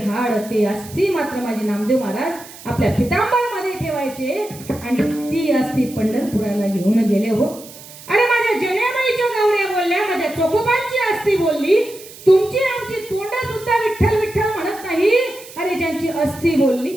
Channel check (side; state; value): right; noise; hiss, 18 dB below the sound